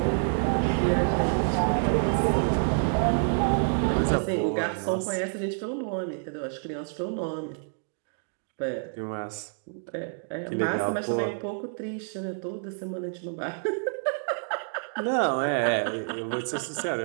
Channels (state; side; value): silent; left; digital silence